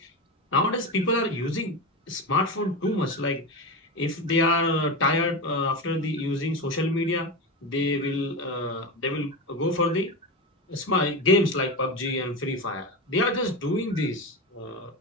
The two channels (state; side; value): normal; both; correlation 0.20